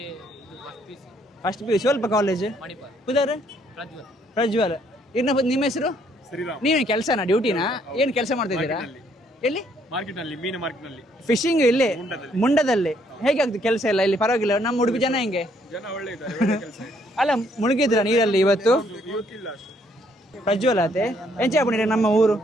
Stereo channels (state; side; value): normal; both; correlation 0.68